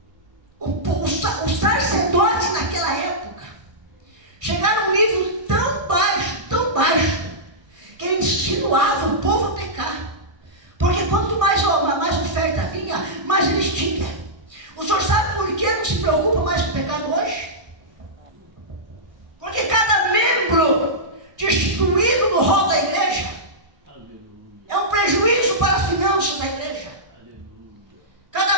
Os sacerdotes naquela época chegaram a um nível tão baixo, que eles insinuavam o povo a pecar. Porque quanto mais oferta vinha, mais eles tinham. O senhor sabe por que não se preocupa mais com o pecado hoje? Porque cada membro destituído no rol da igreja é um prejuízo para as finanças da igreja.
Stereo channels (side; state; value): left; late; 1.2 ms